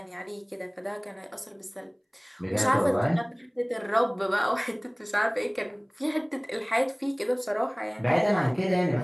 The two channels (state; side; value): identical; both; correlation 1.00